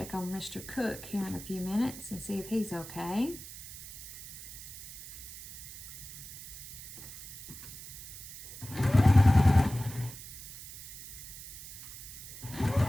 on Mr. Cook here in a few minutes and see if he's okay.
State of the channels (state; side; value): noise; right; hiss, 13 dB below the sound